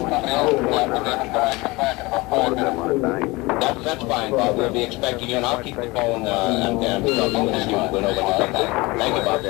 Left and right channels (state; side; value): quieter; right; 23.2 dB